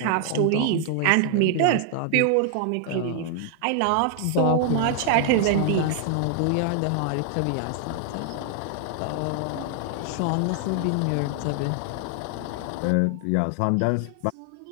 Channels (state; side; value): different; both; correlation 0.00